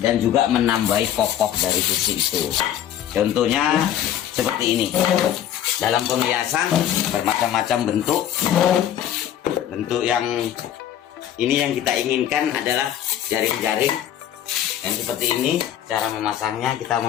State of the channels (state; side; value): quieter; right; 10.8 dB